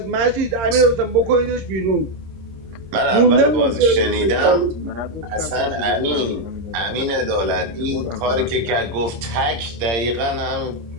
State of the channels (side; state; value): left; late; 26 ms